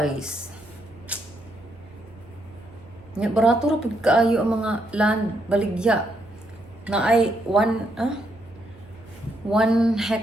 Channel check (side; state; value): right; noise; hum, 25 dB below the sound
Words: Nya barato ra pud kaayo ang mga land baligya na ay 1